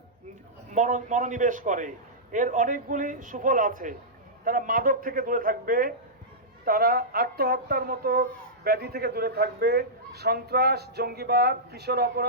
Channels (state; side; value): normal; both; correlation -0.14